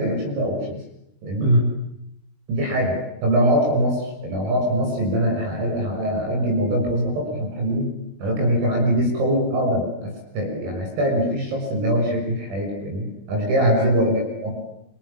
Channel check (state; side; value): late; left; 20 ms